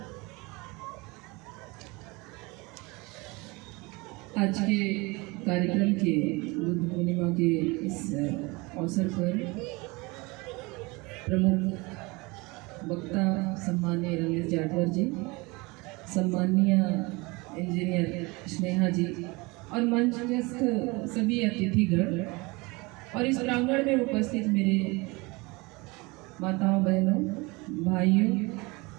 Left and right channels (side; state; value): left; quieter; 25.2 dB